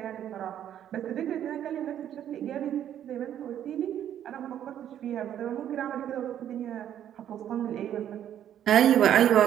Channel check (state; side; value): quieter; left; 10.5 dB